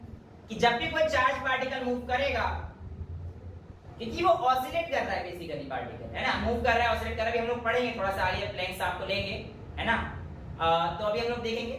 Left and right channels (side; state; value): both; identical; correlation 1.00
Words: कि जब भी कोई चार्ज पार्टिकल मूव करेगा, क्योंकि वो ऑसिलेट कर रहा है बेसिकली पार्टिकल, है ना, मूव कर रहा है, ऑसिलेट कर रहा है। हम लोग पढ़ेंगे थोड़ा सा आगे, प्लैंक्स आपको लेंगे, है ना, तो अभी हम लोग देखेंगे।